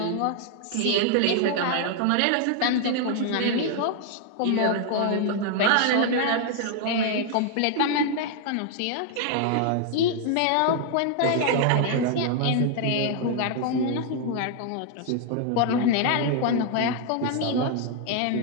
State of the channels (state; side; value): different; both; correlation 0.00